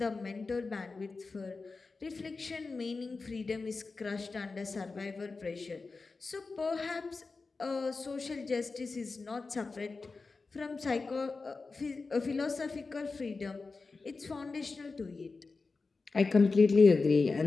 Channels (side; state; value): right; quieter; 4.1 dB